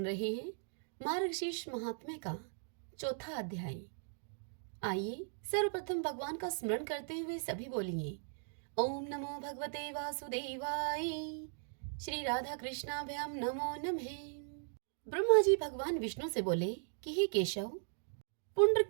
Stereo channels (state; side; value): silent; left; digital silence